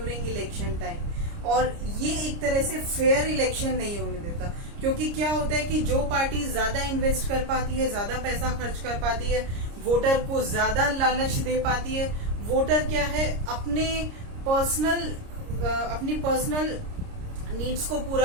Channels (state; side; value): late; left; 30 ms